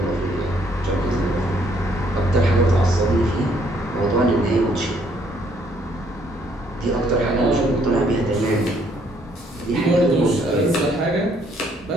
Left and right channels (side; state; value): both; normal; correlation 0.67